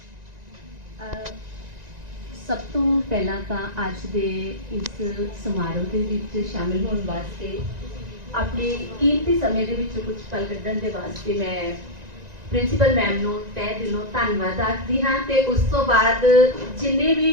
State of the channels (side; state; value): left; late; 1.9 ms